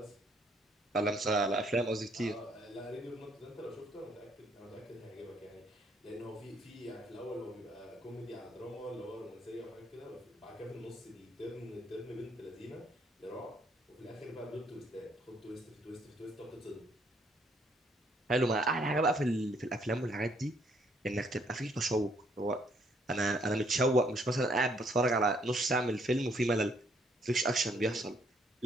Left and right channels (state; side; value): normal; both; correlation 0.67